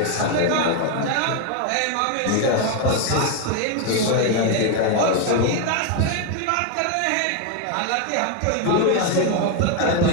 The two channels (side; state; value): both; different; correlation 0.01